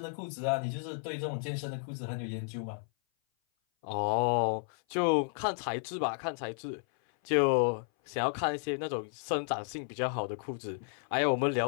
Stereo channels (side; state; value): right; silent; 56 dB below the other